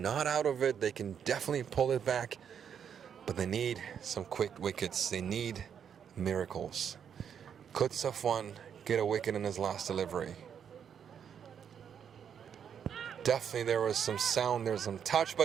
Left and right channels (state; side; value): quieter; left; 8.0 dB